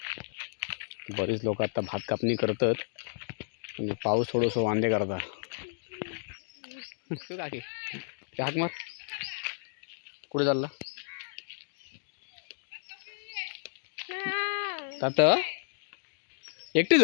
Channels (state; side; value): silent; right; digital silence